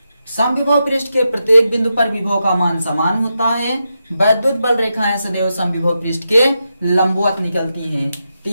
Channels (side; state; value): both; inverted; correlation -0.87